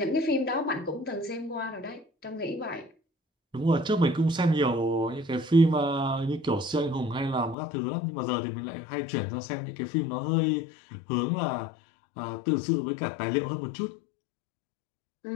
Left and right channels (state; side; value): drops out; right; at 7.6 s